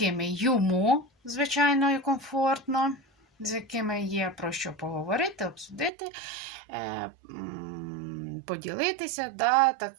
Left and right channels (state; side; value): drops out; left; at 5.9 s